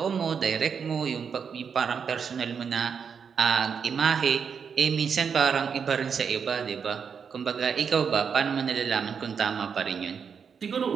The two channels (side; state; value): left; quieter; 6.6 dB